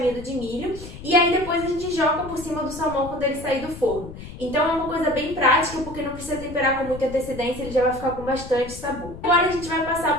de milho e aí depois a gente joga por cima do salmão quando ele sair do forno. Então é uma coisa bem prática porque não precisa temperar com muita antecedência, ele já vai ficar com bastante sabor. Agora a gente vai passar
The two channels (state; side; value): noise; left; rumble, 13 dB below the sound